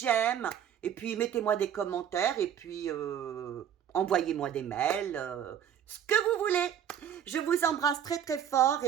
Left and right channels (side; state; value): left; quieter; 9.3 dB